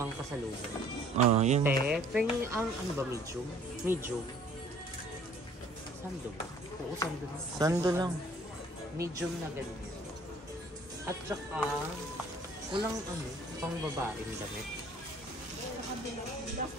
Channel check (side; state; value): both; normal; correlation 0.55